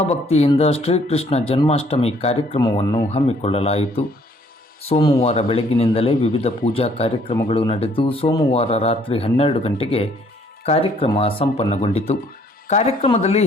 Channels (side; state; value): both; normal; correlation 0.63